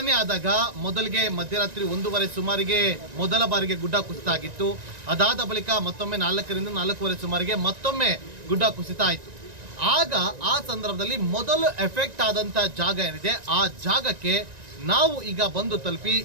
ಆದಾಗ ಮೊದಲಿಗೆ ಮಧ್ಯರಾತ್ರಿ 1:30 ಸುಮಾರಿಗೆ ಮೊದಲ ಬಾರಿಗೆ ಗುಡ್ಡ ಕುಸಿತ ಆಗಿತ್ತು. ಅದಾದ ಬಳಿಕ ಮತ್ತೊಮ್ಮೆ 4ರಿಂದ 4:15 ಸುಮಾರಿಗೆ ಮತ್ತೊಮ್ಮೆ ಗುಡ್ಡ ಕುಸಿತ ಆಯಿತು. ಆಗ ಆ ಸಂದರ್ಭದಲ್ಲಿ ಮೊದಲು ಎಫೆಕ್ಟ್ ಆದಂಥ ಜಾಗ ಏನಿದೆ ಆ ಜಾಗಕ್ಕೆ ನಾವು ಈಗ ಬಂದು ತಲುಪಿ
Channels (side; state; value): left; late; 1.9 ms